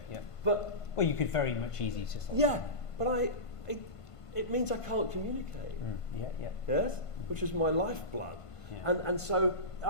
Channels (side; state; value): right; late; 1.5 ms